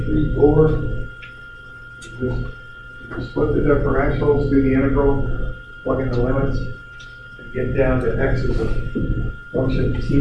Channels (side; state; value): both; identical; correlation 1.00